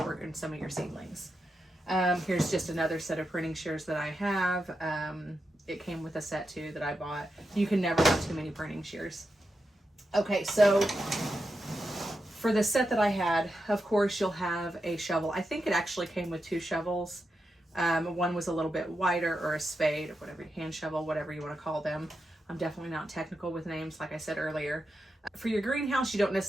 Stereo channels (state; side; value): normal; both; correlation 0.87